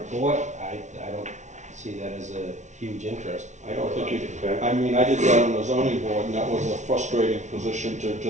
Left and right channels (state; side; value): late; left; 0.34 ms